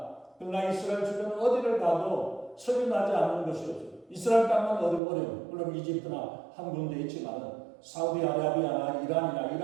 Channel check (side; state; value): left; drops out; at 5.0 s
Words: 그러나 이스라엘 주변 어디를 가도 석유 나지 않는 것이 없어요. 이스라엘 땅은 어려워요. 물론 이집트나 한 군데 있지만 사우디아라비아나 이란이나